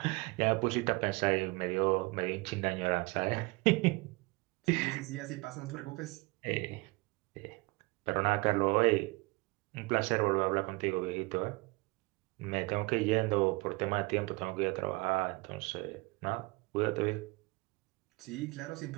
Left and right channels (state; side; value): quieter; left; 24.8 dB